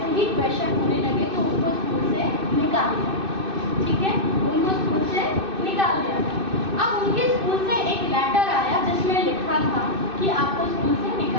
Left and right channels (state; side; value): late; left; 2.6 ms